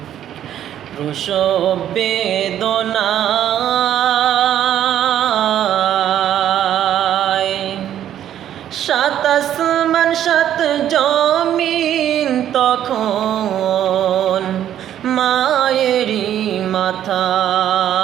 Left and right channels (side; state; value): left; quieter; 10.9 dB